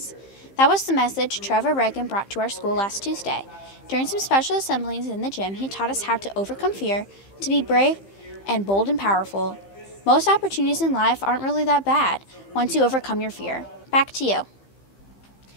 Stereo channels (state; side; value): late; right; 15 ms